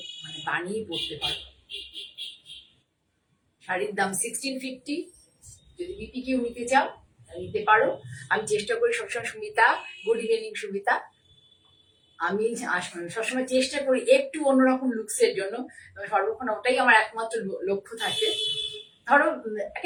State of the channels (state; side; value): identical; both; correlation 1.00